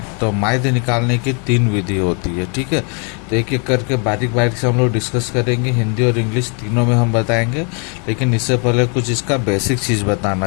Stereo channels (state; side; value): quieter; right; 38.0 dB